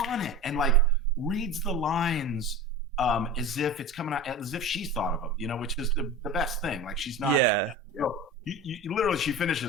it, and like reads the lines as if it's coming out, as if she's thought of them, which is the best thing. Like she's not. Yeah. You literally, she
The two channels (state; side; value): normal; both; correlation 0.32